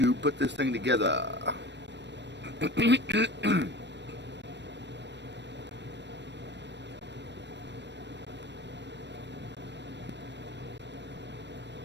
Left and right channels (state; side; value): late; left; 0.51 ms